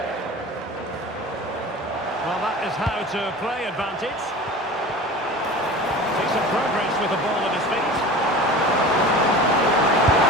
Well, that is how to play advantage. Decent progress with the ball at his feet.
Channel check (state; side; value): normal; both; correlation 0.37